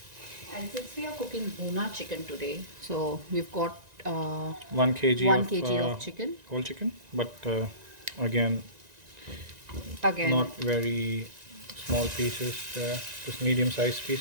And since we are cooking Bhuna chicken today, so we've got 1 kg 1 kg of chicken. Whole chicken, but again, Again, not very small pieces, just medium-sized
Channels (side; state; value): left; late; 1.9 ms